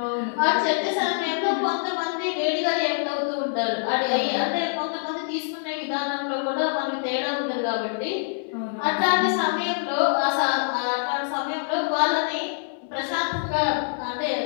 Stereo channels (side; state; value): right; silent; digital silence